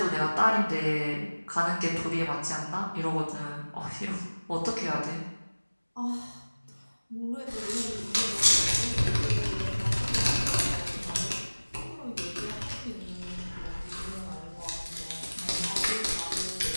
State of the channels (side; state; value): both; inverted; correlation -1.00